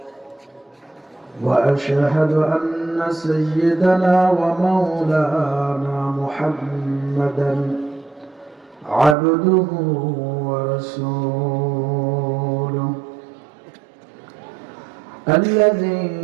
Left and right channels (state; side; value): drops out; left; at 9.2 s